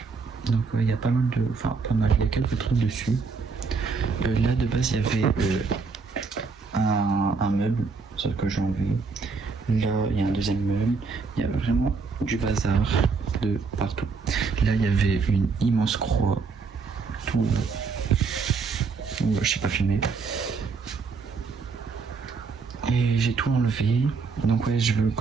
Donc ouais, il y a pas mal de... Enfin, pas mal, il y a quelques trucs dessus. Là, de base, il y avait un meuble, sauf que j'ai enlevé. Là, il y a un deuxième meuble. Il y a vraiment du bazar de partout. Là, il y avait une immense croix. Tout là. Ouais, je sais pas filmer. Et j'ai tout enlevé. Donc ouais,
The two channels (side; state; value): left; quieter; 4.7 dB